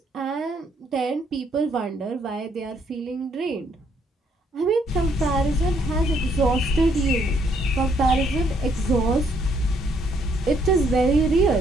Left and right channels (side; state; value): both; normal; correlation 0.69